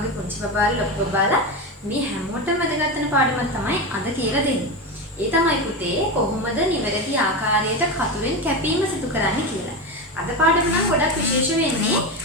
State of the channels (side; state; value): both; normal; correlation 0.18